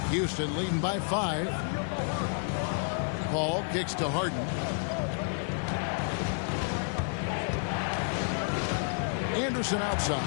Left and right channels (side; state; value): right; silent; 58 dB below the other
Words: Houston leading by 5. Paul kicks to Harden. Anderson